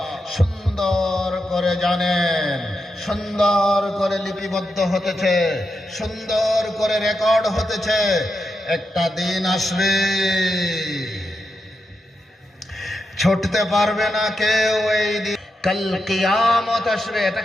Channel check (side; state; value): both; normal; correlation 0.86